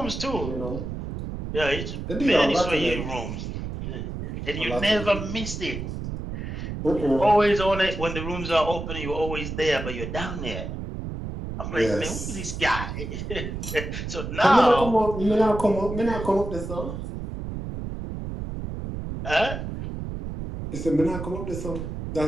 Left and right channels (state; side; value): noise; right; rumble, 6 dB below the sound